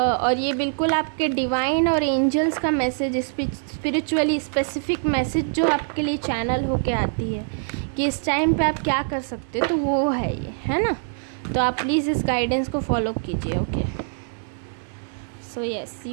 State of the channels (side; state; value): left; silent; 63 dB below the other